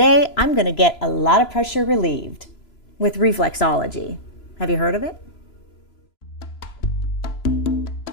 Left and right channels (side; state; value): right; late; 3.0 ms